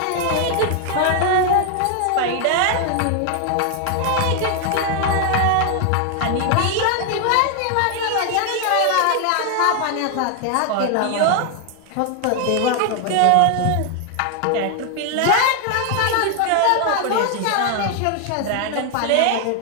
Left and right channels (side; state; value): both; different; correlation 0.00